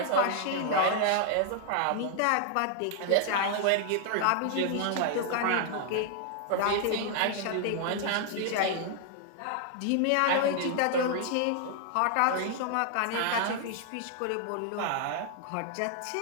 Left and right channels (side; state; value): both; different; correlation 0.00